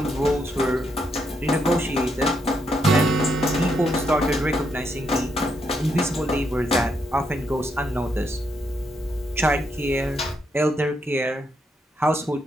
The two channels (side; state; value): both; normal; correlation 0.78